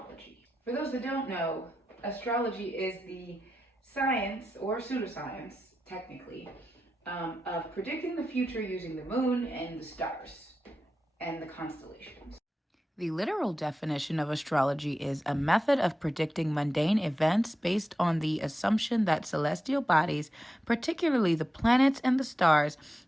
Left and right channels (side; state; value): both; normal; correlation 0.90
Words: For those that don't know, astrology is the science or pseudoscience, technically, of predicting the future using the moon and the stars and the constellations. The literal definition of astrology is a method of predicting mundane events based on the assumption that celestial bodies, particularly the planets and the stars,